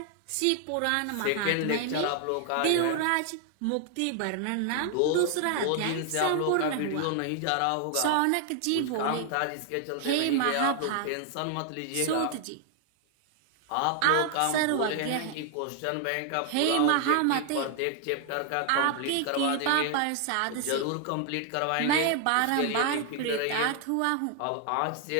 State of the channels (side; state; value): both; different; correlation 0.00